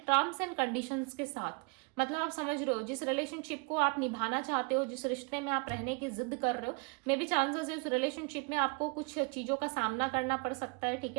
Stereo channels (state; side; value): quieter; left; 33.1 dB